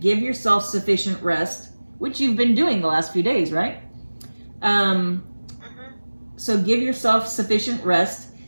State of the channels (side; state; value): both; inverted; correlation -1.00